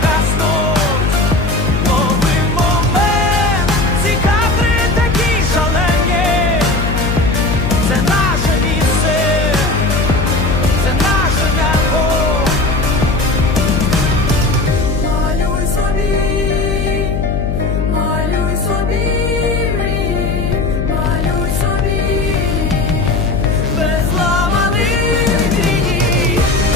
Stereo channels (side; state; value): left; noise; hum, 1 dB below the sound